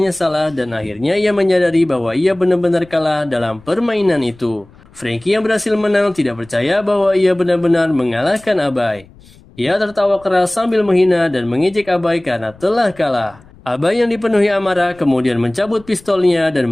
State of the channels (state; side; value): noise; left; rumble, 25 dB below the sound